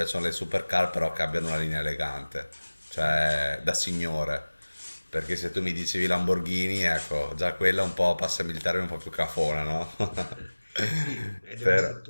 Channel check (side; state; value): both; inverted; correlation -1.00